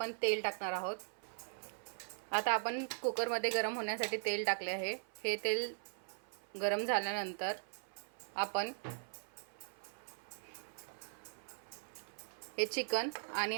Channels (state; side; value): silent; left; 51 dB below the other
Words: तेल टाकणार आहोत। आता आपण कुकरमध्ये गरम होण्यासाठी तेल टाकले आहे। हे तेल गरम झाल्यानंतर आपण हे चिकन